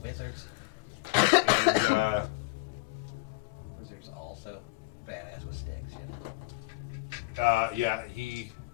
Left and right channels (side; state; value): right; quieter; 23.4 dB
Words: wizards. And Wizards also badass with sticks, you know. yeah, he